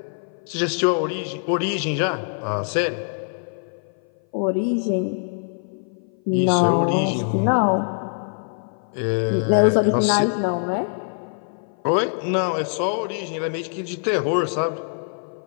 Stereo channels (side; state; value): right; silent; 58 dB below the other